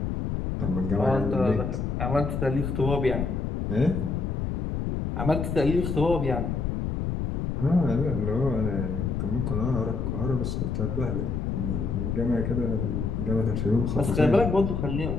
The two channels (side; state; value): left; noise; rumble, 1 dB below the sound